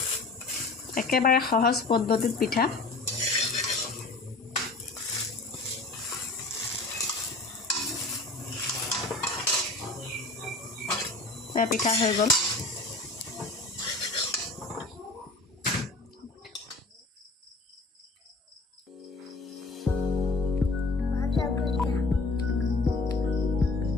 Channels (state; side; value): quieter; right; 3.3 dB